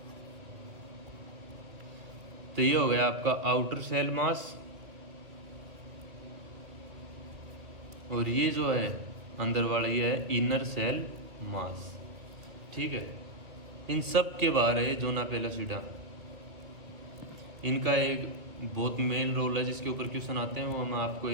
तो ये हो गया आपका आउटर सेल मास, और ये जो है अंदर वाला ये है इनर सेल मास। ठीक है, इन सब के बाहर है जोना पेलासिडा। इनका एक बहुत मेन रोल है जिसके ऊपर क्वेश्चन आते हैं, वो मैं आपको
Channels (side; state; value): left; late; 2.4 ms